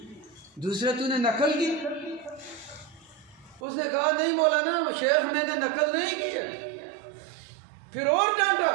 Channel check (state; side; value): drops out; left; at 3.6 s